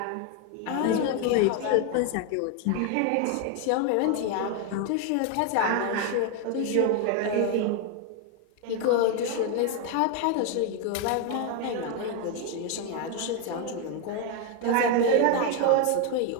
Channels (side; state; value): both; different; correlation 0.01